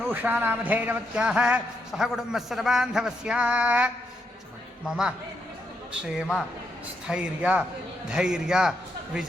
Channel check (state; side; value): normal; both; correlation 0.80